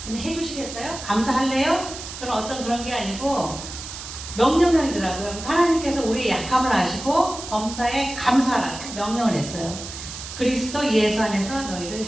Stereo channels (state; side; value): noise; right; hiss, 10 dB below the sound